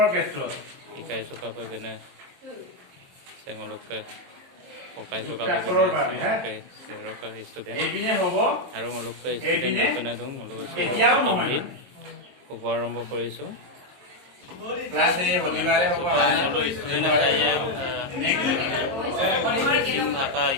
ক্ষেত্ৰত শিকাইছো কাপে কেনে চেঙলকে পকাইছো কাপে যুক্তাক্ষৰৰ বাবে সেৰকা ষ্টুডেন্ট এইপিনে হ'ব আৰু অলপকে ষ্টুডেন্ট বনাই দিওঁ অলপ এতিয়াও প্ৰথম নহয় দিন শুভ আৰম্ভ কৰিছো ক্লাছ এই শনিবাৰে হ'ব সকলো ষ্টুডেন্ট আছে মিচিং ভাষা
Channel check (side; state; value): left; late; 22 ms